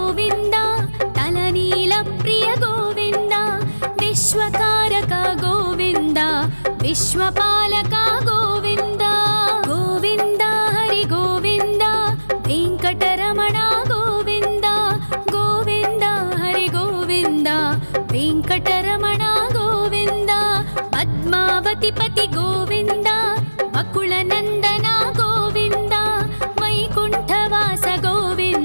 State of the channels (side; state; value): both; inverted; correlation -1.00